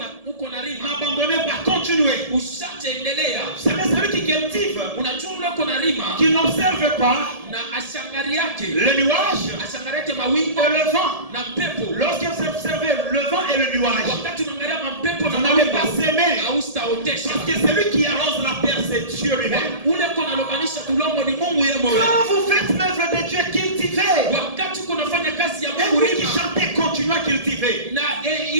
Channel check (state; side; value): late; left; 1.7 ms